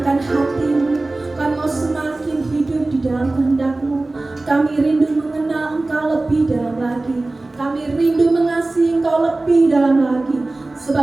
hati-Mu. Kami mau semakin hidup di dalam kehendak-Mu. Kami rindu mengenal Engkau lebih dalam lagi. Kami rindu mengasihi Engkau lebih dalam lagi.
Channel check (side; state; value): left; quieter; 3.0 dB